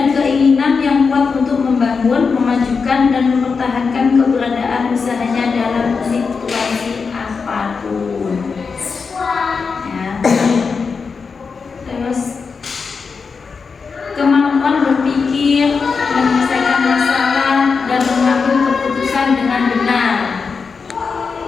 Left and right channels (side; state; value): right; quieter; 5.2 dB